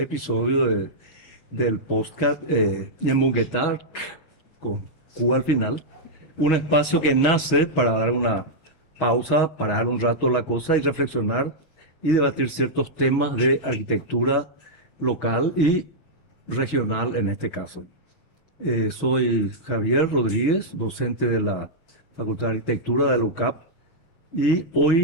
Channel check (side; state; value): right; late; 6.3 ms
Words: del podcast Yemungetar con Q al final. Un espacio que nace para dar una pausa, parar un rato la cosa y reflexionar y debatir ciertos temas de arquitectura local y regional en este caso. Soy Javier Rodríguez, docente de la Facultad de Arquitectura de la UCAP, y